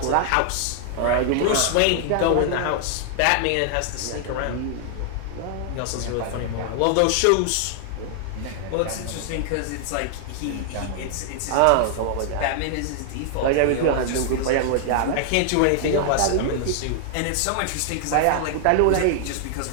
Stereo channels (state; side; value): different; both; correlation 0.00